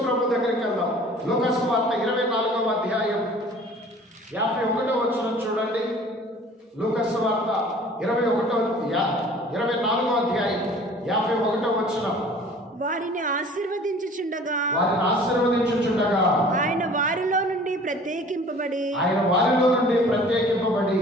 ప్రభు దగ్గరికి వెళ్దాం. లూకా సువార్త 24వ అధ్యాయం 51వ వచనం చూడండి. లూకా సువార్త 24వ అధ్యాయం 51వ వచనం. వారిని ఆశీర్వదించుచుండగా ఆయన వారిలో నుండి ప్రత్యేకింపబడి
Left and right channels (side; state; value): both; normal; correlation 0.48